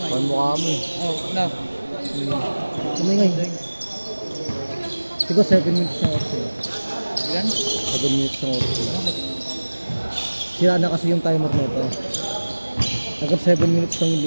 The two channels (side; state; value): both; inverted; correlation -1.00